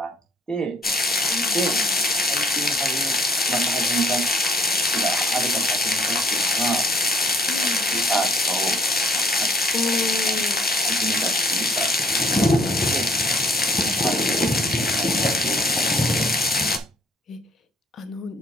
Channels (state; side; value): normal; both; correlation 0.58